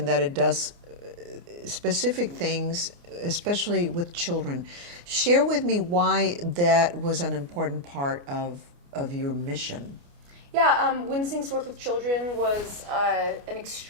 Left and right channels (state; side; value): late; left; 29 ms